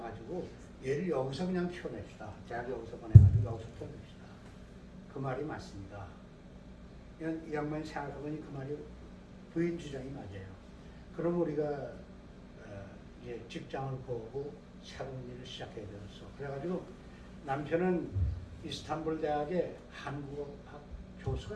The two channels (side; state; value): both; identical; correlation 1.00